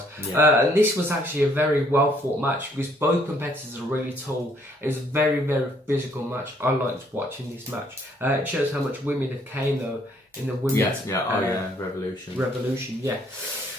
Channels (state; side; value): normal; both; correlation 0.66